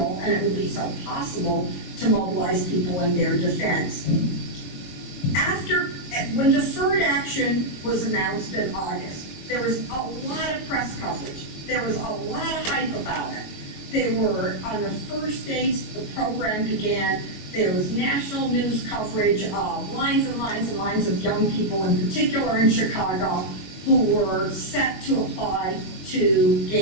and it would be so possible to mobilize people in their defense. When deferred action was announced in August, there was a lot of press coverage. There was a lot of hype about it. They were, on the first days the program began, there was national news coverage of lines and lines and lines of young people, in particular in Chicago, who were set to apply to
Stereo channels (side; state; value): right; late; 22 ms